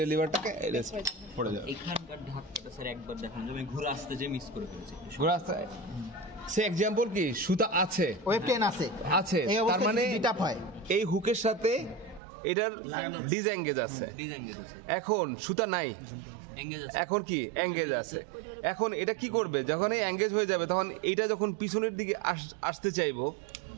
লিভারটাকে পড়ে যাবে। এখানকার ধাক্কাটা স্যার একবার দেখান, আমি ঘুরে আসতে যে মিস করে ফেলেছি। ঘোরা সে এক্সাম্পল কি সুতা আছে, ওয়েব টেন আছে, এই তার মানে বিটাপ হয়, এই হুকের সাথে এটার ডিসএঙ্গেজ আছে, ডিসএঙ্গেজ আছে, এখন সুতা নাই, এঙ্গেজ আছে, এখন কি এঙ্গেজ আছে। এখন এটা কি করবে, যখন এই এঙ্গেজ হয়ে যাবে, তখন এইটা যখন পিছনের দিকে আসতে চাইবো,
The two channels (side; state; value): left; drops out; at 12.2 s